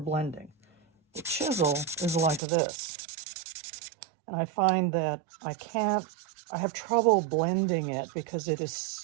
The chisel is like this. And I find that I have trouble blending it because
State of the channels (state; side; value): drops out; left; at 2.4 s